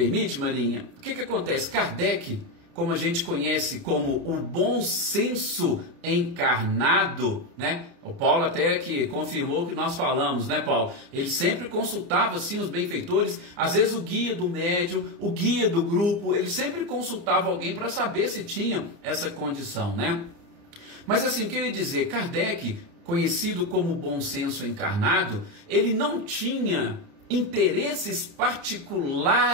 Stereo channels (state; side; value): late; left; 29 ms